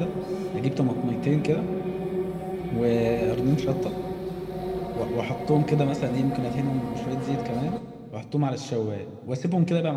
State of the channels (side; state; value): both; identical; correlation 1.00